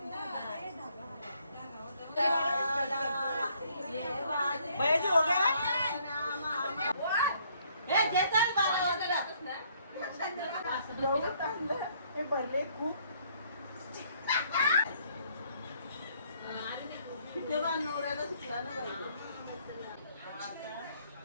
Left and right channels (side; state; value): both; inverted; correlation -0.65